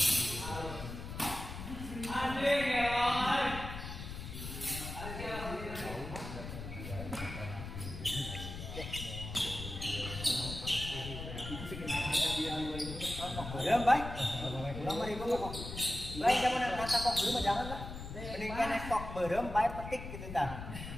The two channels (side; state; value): left; noise; rumble, 8 dB below the sound